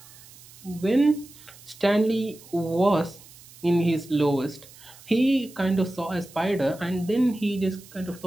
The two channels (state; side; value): noise; right; hiss, 21 dB below the sound